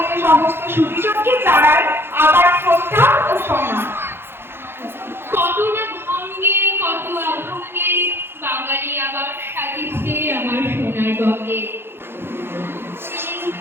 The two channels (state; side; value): late; left; 0.11 ms